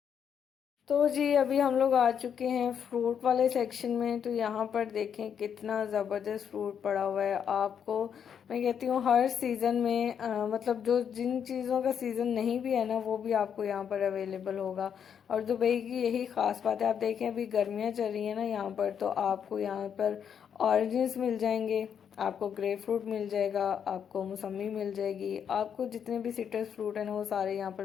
तो जी अभी हम लोग आ चुके हैं फ्रूट वाले सेक्शन में। तो यहाँ पर देखें कितना ज़बरदस्त फ्रूट पड़ा हुआ है। आपको मैं कहती हूँ हर सीज़न में मतलब जो जिन चीज़ों का सीज़न नहीं भी है ना, वो भी आपको यहाँ पर अवेलेबल होगा। और दुबई की यही ख़ास बात है। आप देखें अभी गर्मियाँ चल रही हैं ना यहाँ पर, तो आपको यहाँ पर ऑरेंजेस मिल जाएंगे, आपको ग्रेप फ्रूट मिल जाएगा, आपको मौसमी मिल जाएगी, आपको जितने भी सिट्रस फ्रूट है ना वो सारे यहाँ पर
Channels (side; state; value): right; quieter; 8.0 dB